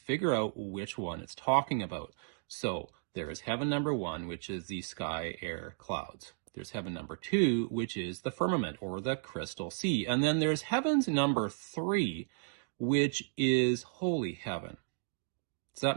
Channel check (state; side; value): silent; left; digital silence